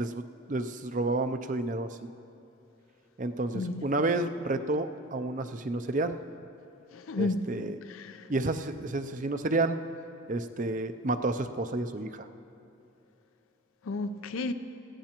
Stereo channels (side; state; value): both; normal; correlation 0.37